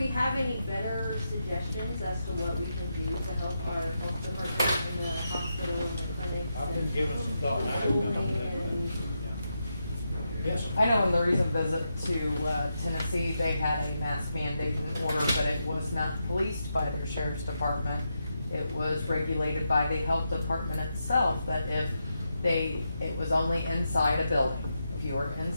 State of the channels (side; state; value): both; inverted; correlation -0.85